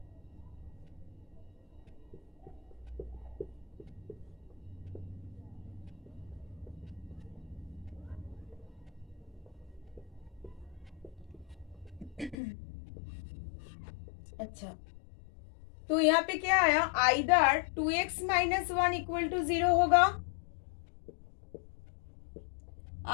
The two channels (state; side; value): drops out; right; at 12.4 s